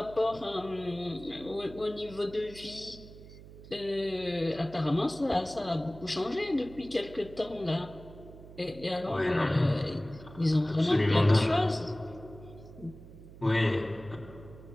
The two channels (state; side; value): noise; right; hum, 17 dB below the sound